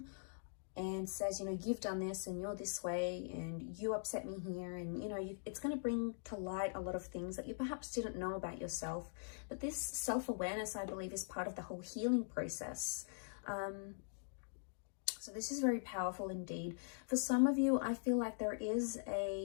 and says, you know, you've done this and you're this way and you upset me here. And, you know, it's going to bring to light a lot of things that you perhaps didn't know about yourself. But this self-awareness, I believe, is part of the whole healing process. So this is very powerful indeed. For some of you, I feel like there is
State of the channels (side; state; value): right; silent; digital silence